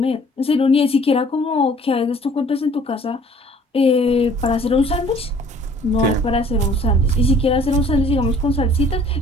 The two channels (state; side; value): normal; both; correlation 0.55